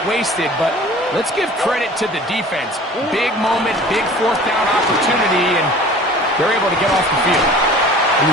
wasted. But let's give credit to the defense. Big moment, big fourth down opportunity, and they're able to get off the field. And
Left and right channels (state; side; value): normal; both; correlation 0.45